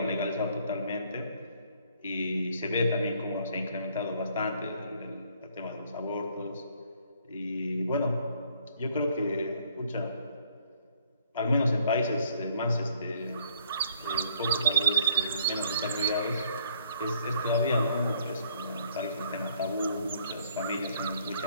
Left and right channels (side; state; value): both; inverted; correlation -0.62